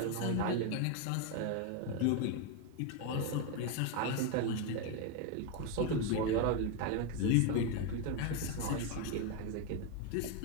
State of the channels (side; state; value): both; different; correlation 0.02